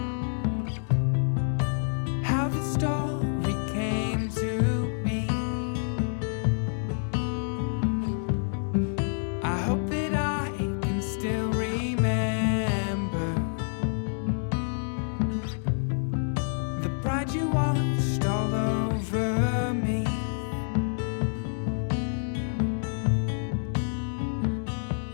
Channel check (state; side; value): silent; right; digital silence